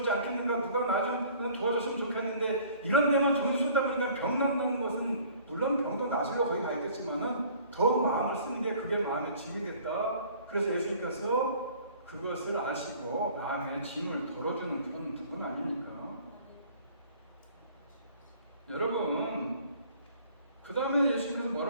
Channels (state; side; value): inverted; both; correlation -0.52